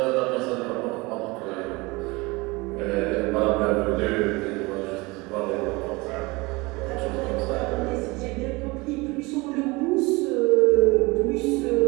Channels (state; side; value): quieter; left; 24.1 dB